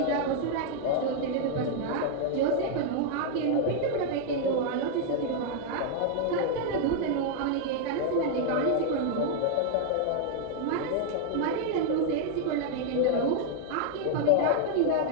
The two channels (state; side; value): different; both; correlation 0.00